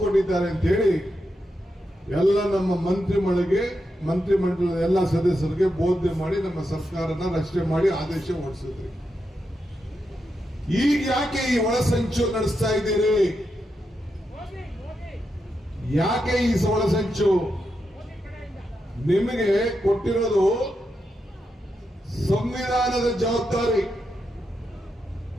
ಅಂತ ಹೇಳಿ ಎಲ್ಲ ನಮ್ಮ ಮಂತ್ರಿಮಂಡಲದ ಎಲ್ಲ ಸದಸ್ಯರಿಗೆ ಬೋಧನೆ ಮಾಡಿ ನಮ್ಮ ಸರ್ಕಾರನ ರಚನೆ ಮಾಡಿ ಆದೇಶ ಹೊರಡಿಸಿದ್ರಿ. ಈಗ ಯಾಕೆ ಈ ಒಳಸಂಚು ನಡೆಸ್ತಾ ಇದ್ದೀರಿ? ಯಾಕೆ ಈ ಒಳಸಂಚು? ನಿಮಗೆ ಕೊಟ್ಟಿರೋದು ಸಂವಿಧಾನದ ಜವಾಬ್ದಾರಿ,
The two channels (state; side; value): normal; both; correlation 0.85